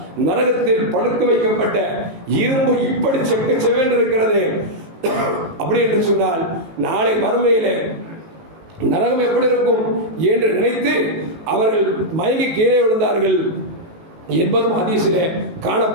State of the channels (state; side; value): late; left; 18 ms